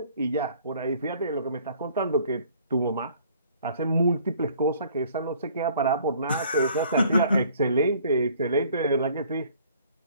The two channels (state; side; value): inverted; both; correlation -0.56